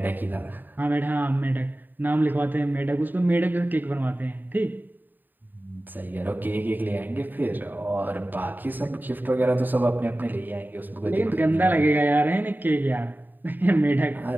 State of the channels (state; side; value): late; left; 0.090 ms